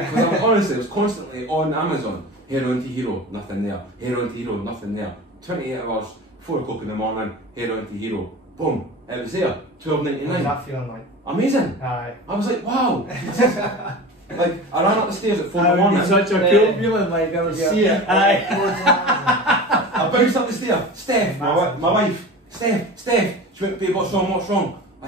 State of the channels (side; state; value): both; normal; correlation 0.33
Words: Because honestly, it was constantly on Amazon. Heroin to hero, nothing there. Heroin to hero, nothing there. 28 hours, 4 o'clock in the morning, heroin to hero. Boom, it was there. $12.99. What was that feeling like? Amazing. Aye. I was like, wow. Like, I ran up the stairs at 4 in the morning. Such a cool feeling, like I was See it. Aye. I bounced up the stair. Steph, my wife. Steph. She went, babe, what's wrong? I